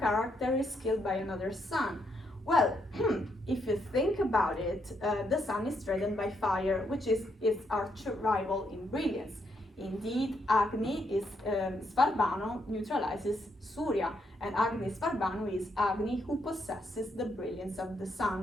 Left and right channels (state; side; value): normal; both; correlation 0.77